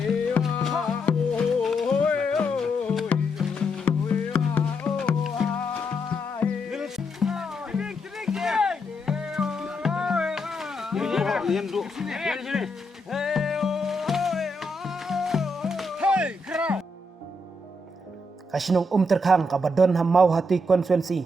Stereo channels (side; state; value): both; normal; correlation 0.80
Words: Kasinong terkang kabadon hamau hati